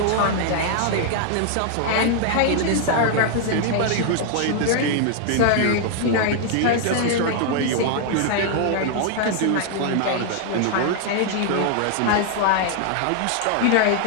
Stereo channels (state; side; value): different; both; correlation 0.00